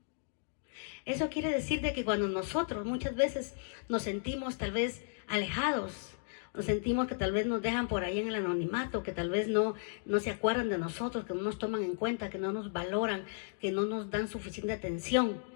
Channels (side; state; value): right; silent; digital silence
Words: Eso quiere decir de que cuando nosotros muchas veces nos sentimos tal vez alejados, nos sentimos que tal vez nos dejan por ahí en el anonimato, que tal vez no se acuerdan de nosotros, que no nos toman en cuenta, que no nos valoran, que no nos dan suficiente atención.